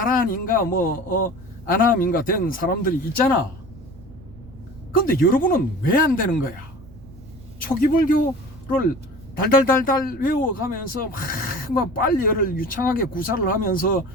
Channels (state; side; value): noise; right; rumble, 20 dB below the sound